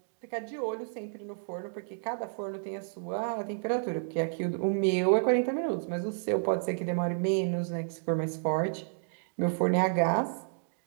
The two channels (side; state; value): left; silent; digital silence